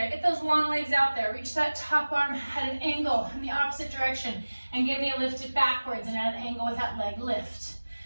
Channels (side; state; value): both; inverted; correlation -1.00